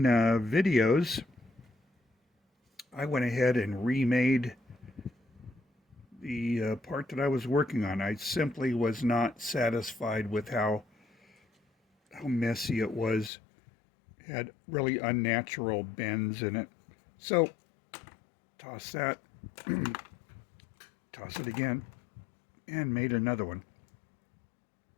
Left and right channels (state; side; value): drops out; right; at 13.3 s